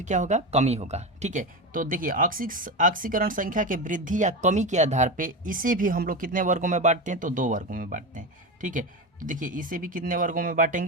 क्या होगा, कमी होगा। ठीक है, तो देखिए ऑक्सीकरण संख्या के वृद्धि या कमी के आधार पे इसे भी हम लोग कितने वर्गों में बांटते हैं, तो 2 वर्गों में बांटते हैं। ठीक है, तो देखिए इसे भी कितने वर्गों में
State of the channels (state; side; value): normal; both; correlation 0.20